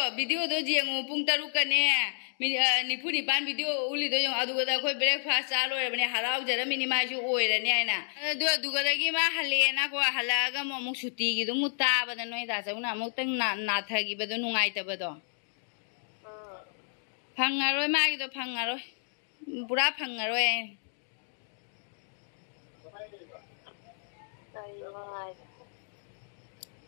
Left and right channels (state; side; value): silent; right; digital silence